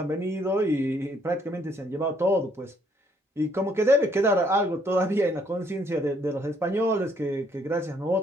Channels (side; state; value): both; normal; correlation 0.67